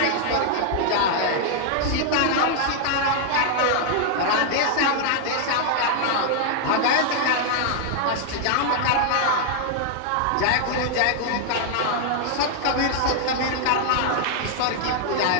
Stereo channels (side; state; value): both; different; correlation 0.00